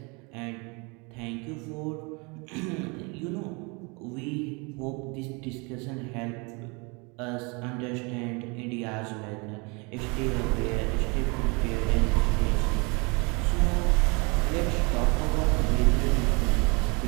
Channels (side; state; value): left; quieter; 29.9 dB